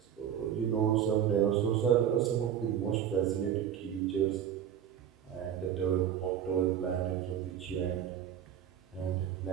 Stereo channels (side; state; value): left; quieter; 9.5 dB